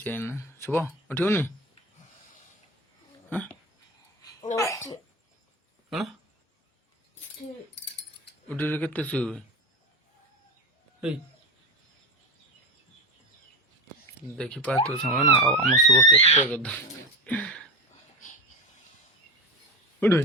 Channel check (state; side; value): normal; both; correlation 0.20